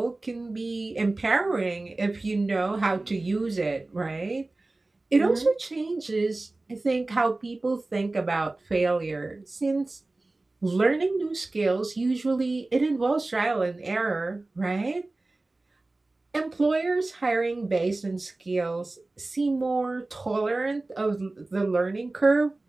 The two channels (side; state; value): left; quieter; 3.1 dB